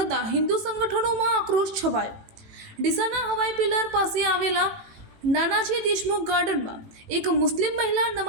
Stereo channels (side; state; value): left; late; 18 ms